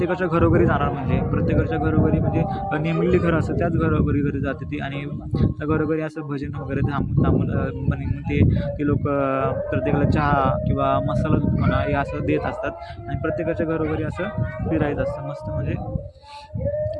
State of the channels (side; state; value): both; identical; correlation 1.00